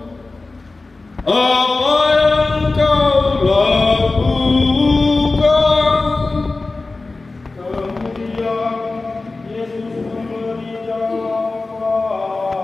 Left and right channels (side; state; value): right; quieter; 3.5 dB